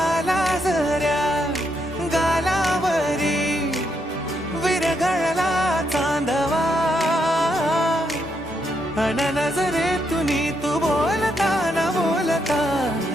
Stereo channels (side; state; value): both; normal; correlation 0.78